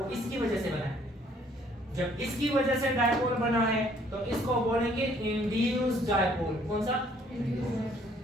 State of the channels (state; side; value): normal; both; correlation 0.62